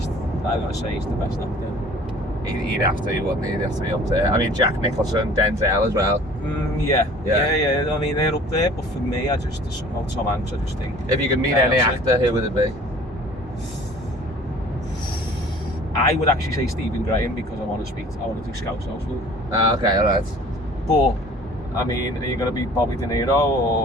I gotta say, he's the best actor. He'd have to, wouldn't he? He'd have to be up there. I mean, Jack Nicholson, Denzel as well. Yeah. I mean, they're up there, but for me, somehow Tom Hanks, I just think. If you could meet any actor, who would it be? I would actually say Stephen Graham because I want to do Scouse House with him. Okay, alright. But, I mean, are you going to be Bobby De Niro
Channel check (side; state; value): both; normal; correlation 0.49